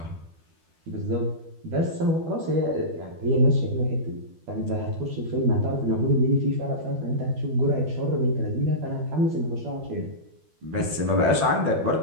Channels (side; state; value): left; late; 12 ms